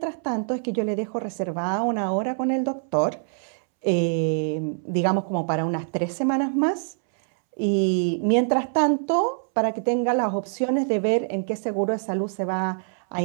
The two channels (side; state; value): left; silent; 62 dB below the other